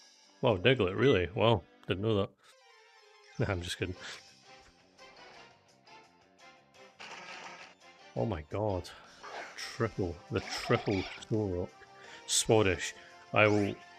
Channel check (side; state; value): both; identical; correlation 1.00